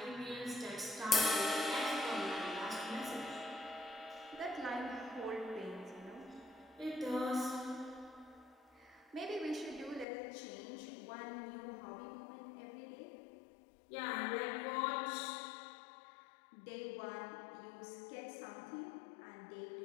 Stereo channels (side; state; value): right; drops out; at 10.1 s